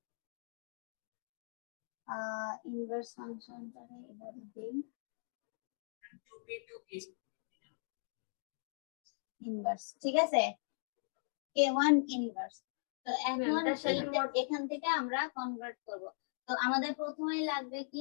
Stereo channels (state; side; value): silent; right; digital silence